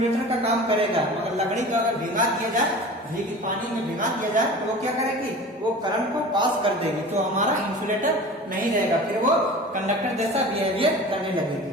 का काम करेगा, मगर लकड़ी को अगर भिगा दिया जाए, पानी में भिगा दिया जाए, तो वो क्या करेगी? वो करंट को पास कर देगी, तो हमारा इंसुलेटर नहीं रहेगा, फिर वो कंडक्टर जैसा बिहेवियर करने लगेगी।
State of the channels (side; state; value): both; normal; correlation 0.37